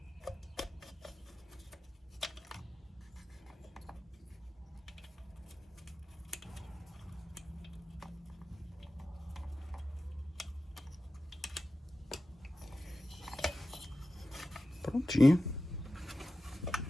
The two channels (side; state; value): both; normal; correlation 0.94